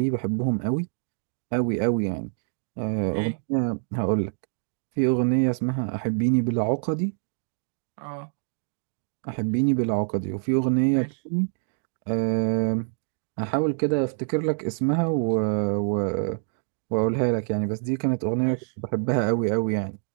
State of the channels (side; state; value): left; silent; digital silence